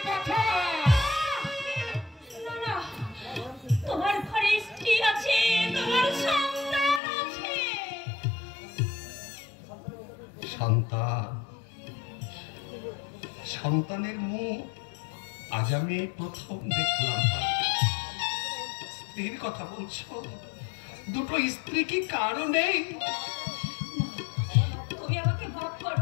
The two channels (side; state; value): right; drops out; at 7.0 s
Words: কথা। না, তোমার ঘরে স্ত্রী আছে, তোমার সন্তান আছে। সন্তানের মুখ আজ আমি প্রথম দেখলাম। স্ত্রীর কথা বলছো? দুটো স্ত্রী কি কারো নেই? তুমি আমাকে ভাব